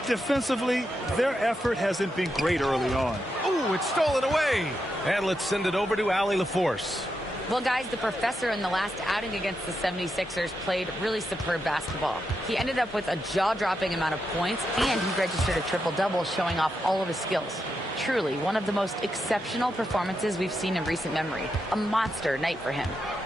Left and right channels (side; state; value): both; normal; correlation 0.85